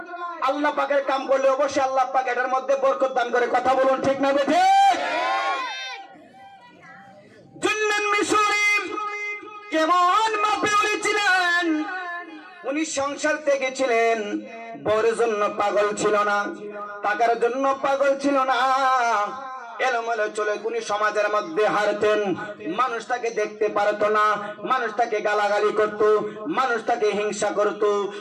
আল্লাহ পাকের কাম করলে অবশ্যই আল্লাহ পাক এটার মধ্যে বরকত দান করে। কথা বলুন ঠিক না বেঠিক? জিন্নুন মিশরী কেমন মাপে ওলি ছিলেন? উনি সংসার থেকে ছিলেন, বউয়ের জন্য পাগল ছিল না, টাকার জন্য পাগল ছিল না। এলোমেলো চলে উনি সমাজের মধ্যে হারতেন, মানুষ তাকে দেখতে পারতো না, মানুষ তাকে গালাগালি করত, মানুষ তাকে হিংসা করত।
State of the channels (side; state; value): both; identical; correlation 1.00